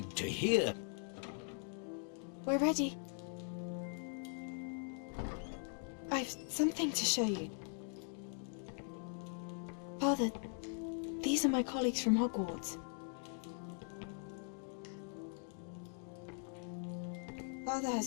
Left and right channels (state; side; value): silent; right; 50 dB below the other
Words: to hear. We're ready. I've something to show you. Father, these are my colleagues from Hogwarts. Father